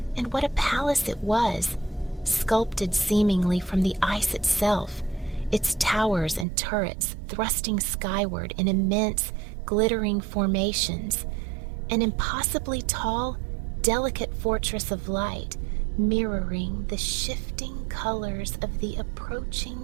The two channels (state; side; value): drops out; left; at 6.5 s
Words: and what a palace it was, sculpted seemingly from the ice itself, its towers and turrets thrusting skyward in immense, glittering formations, an impossibly tall, delicate fortress of light, mirroring the shifting colors of the